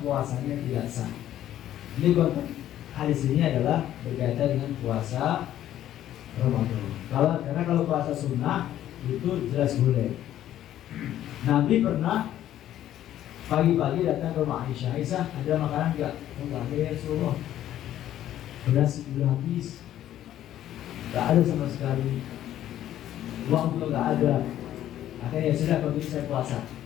puasanya tidak sah. Ini konteks hadis ini adalah berkaitan dengan puasa Ramadan. Karena kalau puasa sunnah itu jelas boleh. Nabi pernah pagi-pagi datang ke rumah Aisyah. Aisyah, ada makanan enggak? Enggak ada ya Rasulullah. Beras sudah habis. Enggak ada sama sekali. Uang juga enggak ada. Akhirnya sudah begitu saya puasa.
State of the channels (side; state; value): right; quieter; 12.2 dB